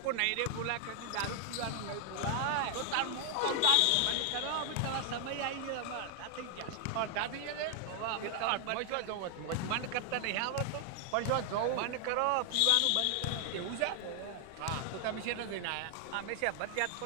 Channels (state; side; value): different; both; correlation 0.00